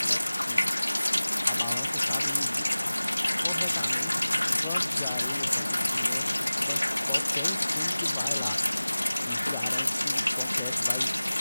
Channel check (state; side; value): inverted; both; correlation -0.98